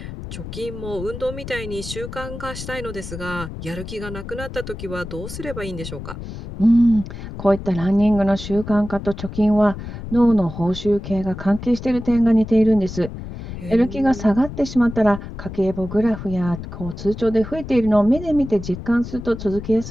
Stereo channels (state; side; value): noise; left; rumble, 10 dB below the sound